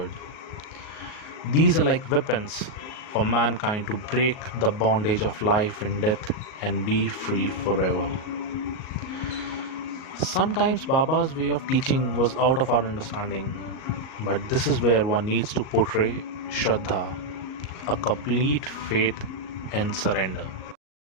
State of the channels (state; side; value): late; right; 38 ms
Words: These are like weapons for mankind to break the bondage of life and death and be free forever. Sometimes Baba's way of teaching was out of our understanding, but this is where one needs to portray Shraddha, a complete faith and surrender.